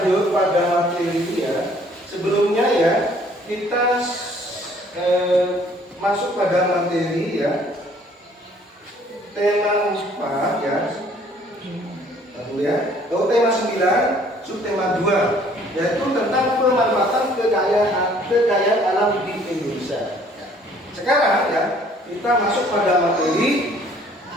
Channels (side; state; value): both; normal; correlation 0.58